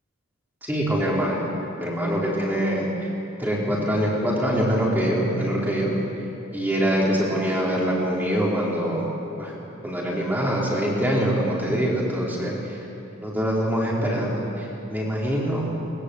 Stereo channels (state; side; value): normal; both; correlation 0.63